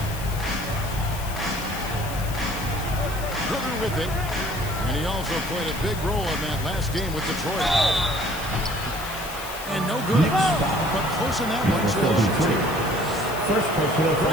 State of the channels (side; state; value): left; noise; hiss, 12 dB below the sound